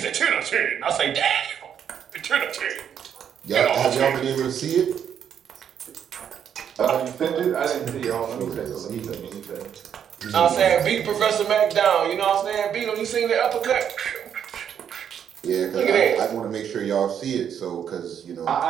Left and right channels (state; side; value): quieter; left; 8.6 dB